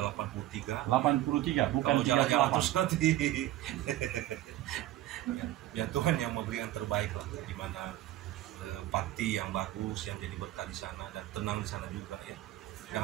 83. 83 bukan 38 nanti. Ya Tuhan yang memberikan terbaik lah, di mana parti yang bagus yang jadi berkat di sana dan tenang di sana juga ya.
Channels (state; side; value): quieter; left; 14.8 dB